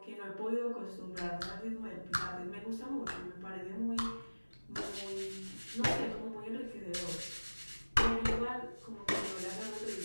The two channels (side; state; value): both; inverted; correlation -1.00